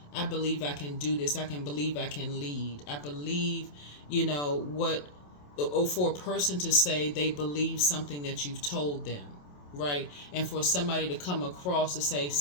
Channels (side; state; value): right; late; 27 ms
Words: I believe I can do this. I can believe I can lead. I believe, or for a person to say they believe something that you've told them, right? And for somebody to come across to say